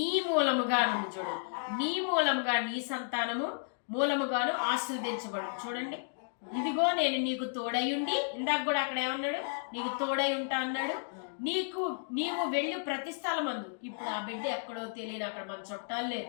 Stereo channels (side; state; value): right; silent; digital silence